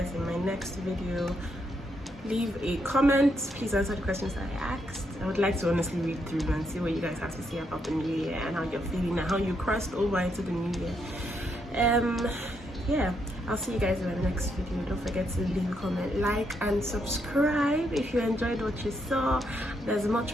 in my next video. Leave a comment. Please answer the questions I asked. I would like to honestly read through and see what you guys have to say about the new year and how you're feeling and how you crossed over into the new year. Yeah, I'll see you guys in my next video. Don't forget to leave a comment, like and subscribe if you enjoyed what you saw. There's much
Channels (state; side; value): normal; both; correlation 0.78